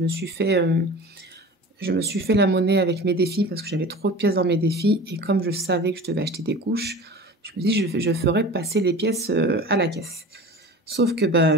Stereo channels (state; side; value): normal; both; correlation 0.37